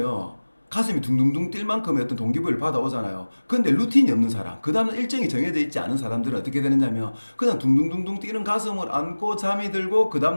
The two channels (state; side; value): inverted; both; correlation -1.00